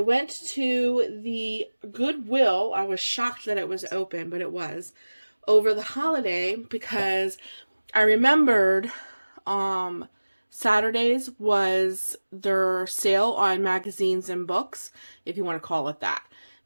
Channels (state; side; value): inverted; both; correlation -1.00